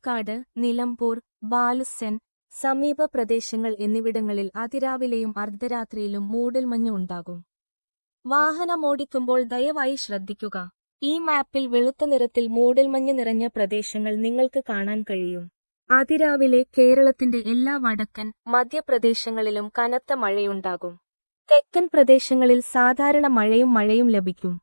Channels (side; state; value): both; inverted; correlation -1.00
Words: നിലമ്പൂർ, ബാലുസ്സൻ, സമീപ പ്രദേശങ്ങൾ എന്നിവിടങ്ങളിൽ അതിരാവിലെയും അർദ്ധരാത്രിയിലും മൂടൽമഞ്ഞ് ഉണ്ടാകും. വാഹനമോടിക്കുമ്പോൾ ദയവായി ശ്രദ്ധിക്കുക. ഈ മാപ്പിൽ വെളുത്ത നിറത്തിൽ മൂടൽമഞ്ഞ് നിറഞ്ഞ പ്രദേശങ്ങൾ നിങ്ങൾക്ക് കാണാൻ കഴിയും. അതിരാവിലെ കേരളത്തിന്റെ എല്ലാ വടക്കൻ, മധ്യപ്രദേശങ്ങളിലും കനത്ത മഴയുണ്ടാകും. തെക്കൻ പ്രദേശങ്ങളിൽ സാധാരണ മഴയും ലഭിക്കും.